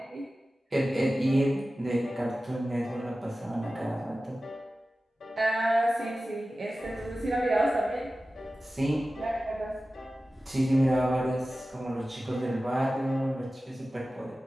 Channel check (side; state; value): both; normal; correlation 0.95